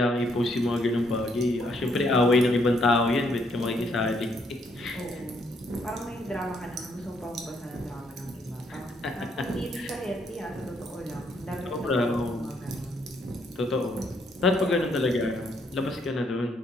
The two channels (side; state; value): both; normal; correlation 0.71